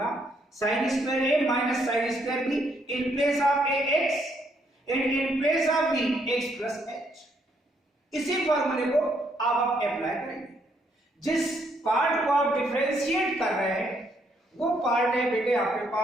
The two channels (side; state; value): both; normal; correlation 0.72